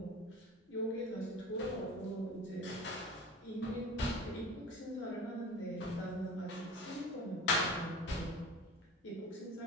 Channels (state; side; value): normal; both; correlation 0.36